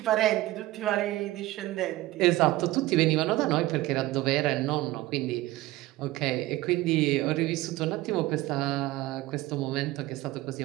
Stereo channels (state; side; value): quieter; left; 17.6 dB